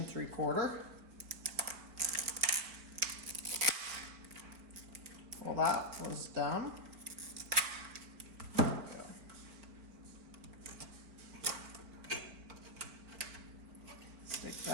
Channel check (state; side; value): late; left; 4.2 ms